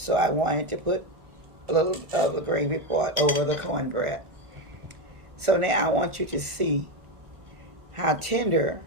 I wanted to put a little of the gravy pot over the cornbread. So now I want you to see how tender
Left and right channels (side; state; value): left; late; 1.4 ms